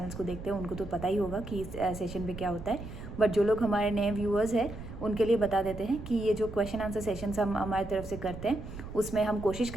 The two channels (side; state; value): right; noise; rumble, 11 dB below the sound